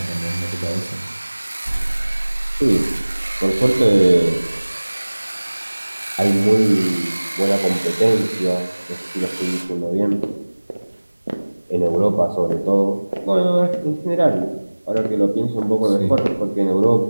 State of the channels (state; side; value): inverted; both; correlation -1.00